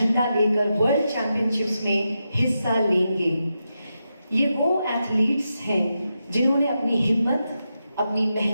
लेकर वर्ल्ड चैंपियनशिप्स में हिस्सा लेंगे। ये वो एथलीट्स हैं जिन्होंने अपनी हिम्मत, अपनी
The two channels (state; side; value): inverted; both; correlation -0.87